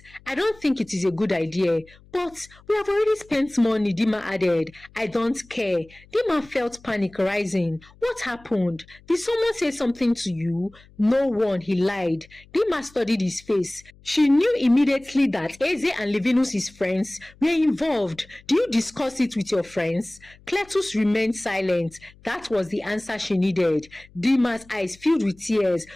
I don't think it is a good idea. But we have already spent money, Dima added. I don't care. Dima felt panic rising. What happened? Did someone say something to you? No one, he lied. Dima studied his face. She knew immediately that Eze and Levinus, his friends, were involved. Do you discuss it with your friends? Cletus remained silent. That was the answer she needed. Dima's eyes filled with tears.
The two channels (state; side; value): noise; left; hum, 26 dB below the sound